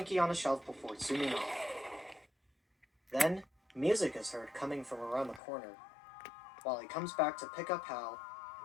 on a shelf before zooming off. Then, music is heard coming from around the corner. Wally comes back to pick up Hal,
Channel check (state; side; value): drops out; right; at 5.4 s